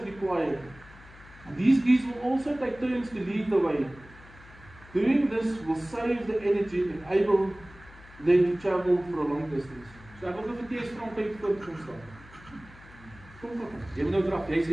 required. These geese will also take turns to lead the way. Doing this will save the energy and enable them to travel for a long distance. So ek wil vir T.S. Frank voor kom staan. Kom. Jy moet nou draf, jy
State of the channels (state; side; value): noise; left; hum, 21 dB below the sound